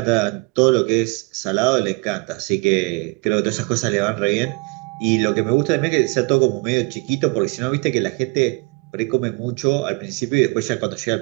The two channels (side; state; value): left; quieter; 27.3 dB